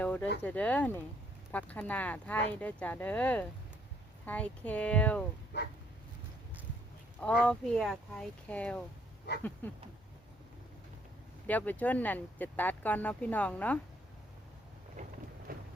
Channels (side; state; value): both; normal; correlation 0.66